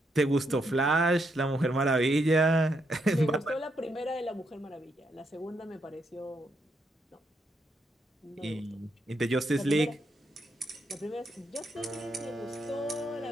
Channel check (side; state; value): both; normal; correlation 0.78